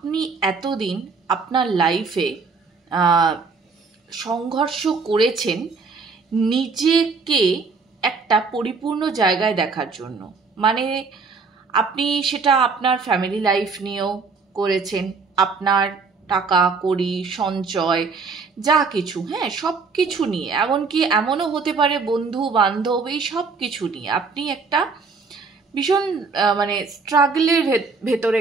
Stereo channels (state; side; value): quieter; left; 4.7 dB